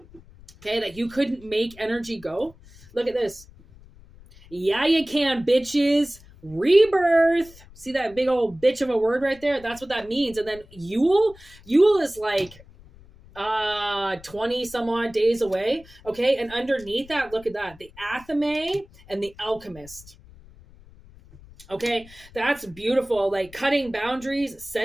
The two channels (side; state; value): left; noise; rumble, 22 dB below the sound